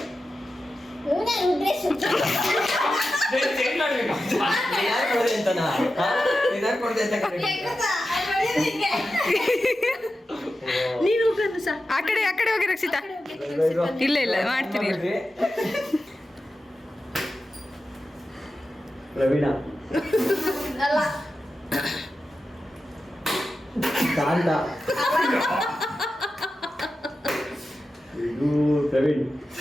ರುದ್ರೇಶ್ ಚೇಂಜ್ ಮಾಡಬೇಕು. ನೀನು ಆ ಕಡೆ ಹೋಗಿ ರಕ್ಷಿತಾ. ಇಲ್ಲ ಮಾಡ್ತೀನಿ. ಪ್ರವೀಣ ಅಲ್ಲ ಕಾಂತ ಇದು ಪ್ರವೀಣ್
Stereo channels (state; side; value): normal; both; correlation 0.92